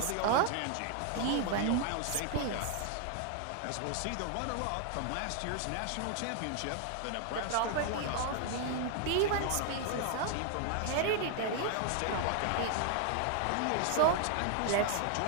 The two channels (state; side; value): different; both; correlation 0.00